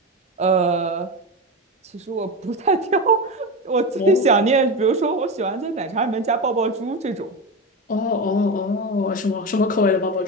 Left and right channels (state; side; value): normal; both; correlation 0.20